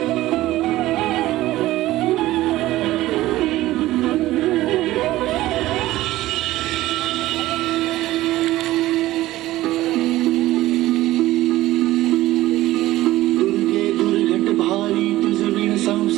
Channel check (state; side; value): quieter; left; 16.3 dB